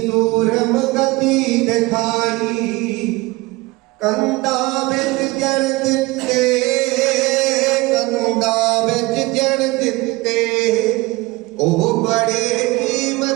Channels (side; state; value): left; quieter; 22.0 dB